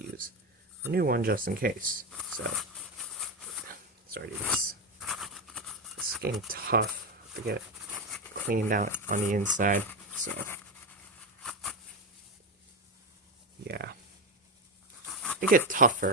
use a new one just in case. So, sorry, this is getting tough to get cleaned out on the inside, so yeah. They get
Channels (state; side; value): normal; both; correlation 0.13